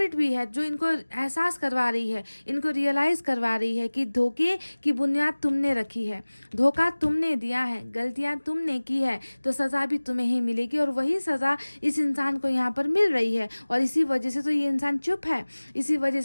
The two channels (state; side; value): inverted; both; correlation -1.00